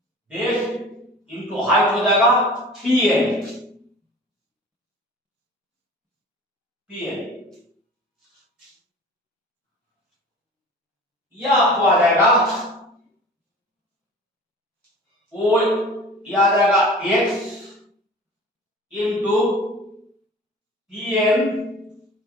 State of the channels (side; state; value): both; normal; correlation 0.41